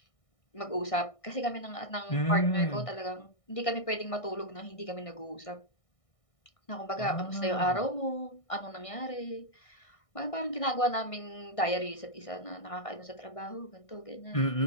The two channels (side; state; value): right; late; 1.6 ms